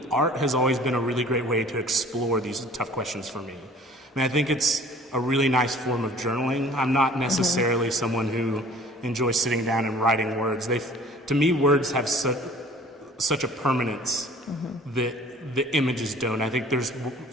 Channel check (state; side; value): normal; both; correlation 0.49